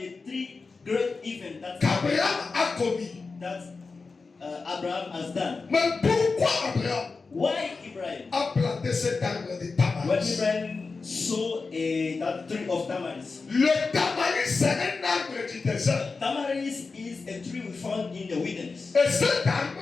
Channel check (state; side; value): quieter; right; 4.3 dB